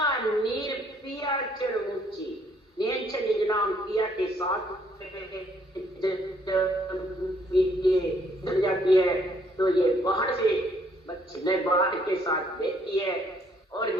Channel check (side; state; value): both; normal; correlation 0.66